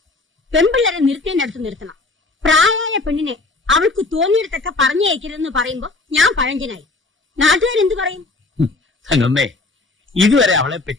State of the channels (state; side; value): quieter; right; 3.4 dB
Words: പെൺപിള്ളേരെ നിർത്തേണ്ടടുത്ത് നിർത്തണം. പ്രായമായ പെണ്ണിനെ അവൾക്ക് തോന്നിയിടത്തൊക്കെ പറഞ്ഞയക്കരുതെന്ന് പറയുമ്പോ ഞാൻ പഴഞ്ചനായി. നാട്ടുകാരെന്തു പറയും? തങ്കമ്മേ, ഇതുവരെ അവളെ